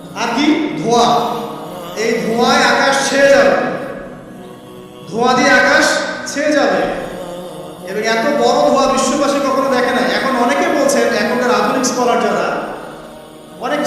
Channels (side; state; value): both; identical; correlation 1.00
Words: আর কি? ধোঁয়া। এই ধোঁয়ায় আকাশ ছেয়ে যাবে, ধোঁয়া দিয়ে আকাশ ছেয়ে যাবে, এবং এত বড় ধোঁয়া বিশ্ববাসী কখনো দেখে না। এখন অনেকে বলছেন, এখনকার আধুনিক স্কলার যারা, অনেক